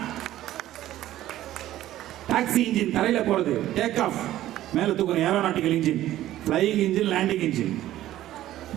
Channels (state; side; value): quieter; left; 13.9 dB